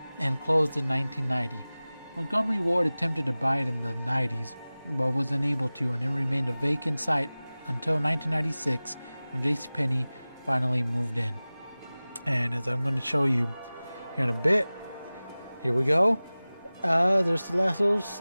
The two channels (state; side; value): inverted; both; correlation -0.98